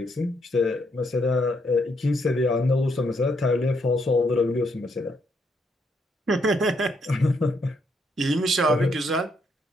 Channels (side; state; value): both; normal; correlation 0.74